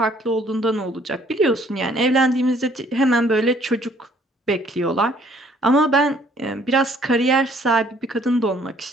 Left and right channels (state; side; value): normal; both; correlation 0.61